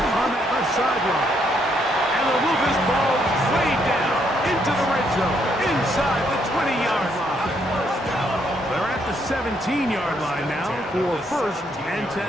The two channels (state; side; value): normal; both; correlation 0.73